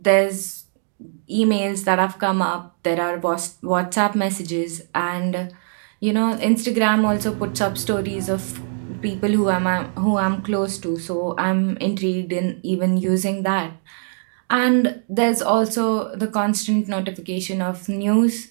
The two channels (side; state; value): left; silent; digital silence